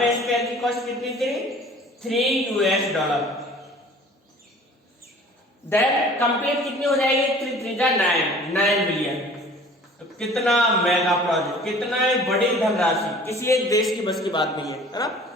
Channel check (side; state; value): both; normal; correlation 0.48